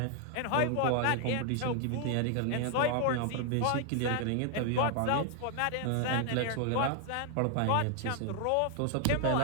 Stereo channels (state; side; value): different; both; correlation 0.00